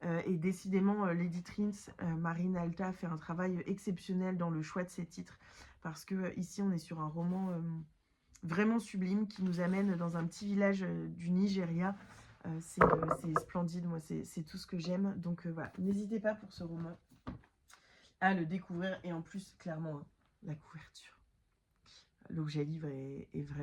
Et décidément, l'éditrice Marine Alta fait un travail exceptionnel dans le choix de ses titres, parce que ici on est sur un roman... vraiment sublime, qui nous amène dans un petit village du Nigeria, C'est splendide, moi c'est tout ce que j'aime. Donc voilà, n'hésitez pas pour ce roman à le découvrir. Et en plus, clairement, hein, la couverture, l'objet livre est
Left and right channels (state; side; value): identical; both; correlation 1.00